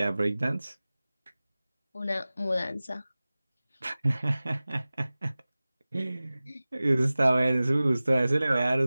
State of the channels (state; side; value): inverted; both; correlation -0.98